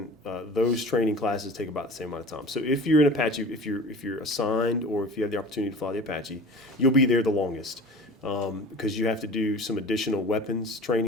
those training classes take about the same amount of time. So if you're an Apache, if you're assigned or if you have the opportunity to fly the Apache, you'll be there the longest. Because you have to do some additional weapons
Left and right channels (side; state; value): both; normal; correlation 0.39